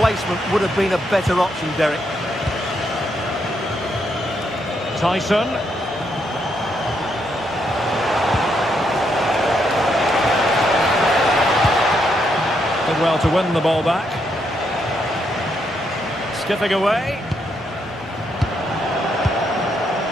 would have been a better option, Derek. Tyson. Did well to win the ball back. Skipping away.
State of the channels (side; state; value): both; normal; correlation 0.77